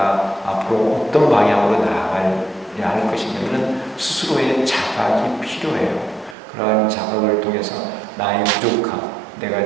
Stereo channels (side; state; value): left; drops out; at 6.4 s